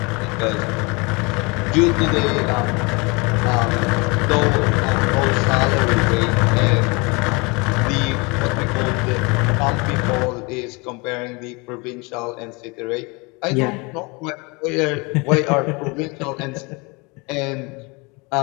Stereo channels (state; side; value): quieter; right; 28.2 dB